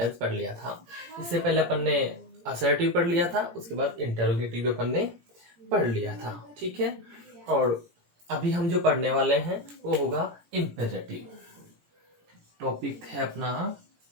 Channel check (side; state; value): left; late; 17 ms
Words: पढ़ लिया था। इससे पहले अपन ने असर्टिव पढ़ लिया था, उसके बाद इंटरोगेटिव अपन ने पढ़ लिया था, ठीक है। और अभी हम जो पढ़ने वाले हैं वो होगा इम्पेरेटिव। टॉपिक है अपना